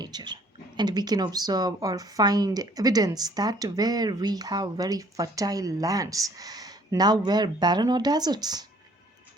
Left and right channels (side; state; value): both; normal; correlation 0.59